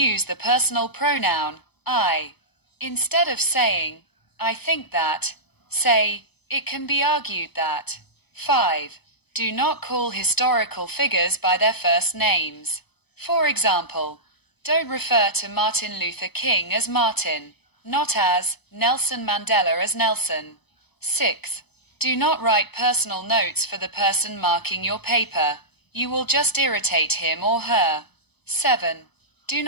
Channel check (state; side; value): late; right; 0.98 ms